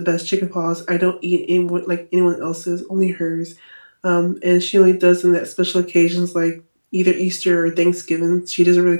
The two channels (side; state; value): both; inverted; correlation -1.00